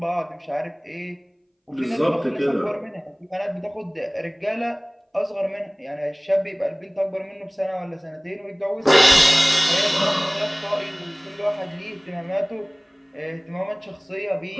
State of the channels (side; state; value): both; identical; correlation 1.00